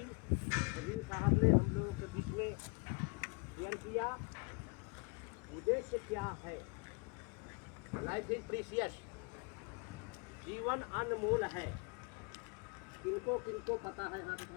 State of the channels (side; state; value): right; quieter; 32.1 dB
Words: नवीन साहब ने हम लोगों के बीच में शेयर किया। उद्देश्य क्या है? लाइफ इज प्रीशियस, जीवन अनमोल है। किनको किनको पता है? हाँ